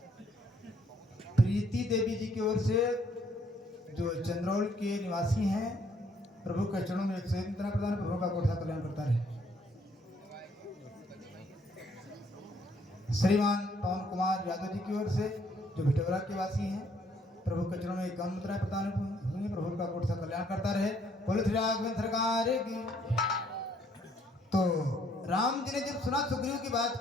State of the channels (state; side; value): normal; both; correlation 0.66